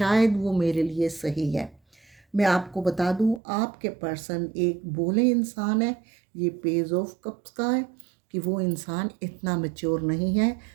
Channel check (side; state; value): left; drops out; at 3.4 s